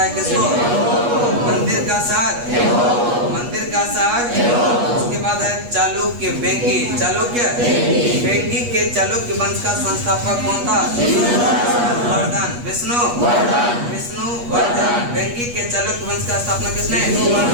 है किसको? मंदिर का शहर, मंदिर का शहर। उसके बाद है चालुक्य, बेंगी, चालुक्य, बेंगी के चालुक्य वंश का संस्थापक कौन था? वर्धन, विष्णु, विष्णुवर्धन। बेंगी के चालुक्य वंश का स्थापना किसने?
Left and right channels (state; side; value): late; left; 8.3 ms